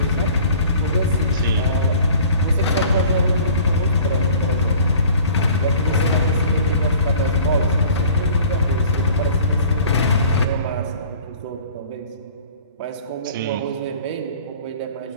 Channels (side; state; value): both; inverted; correlation -0.48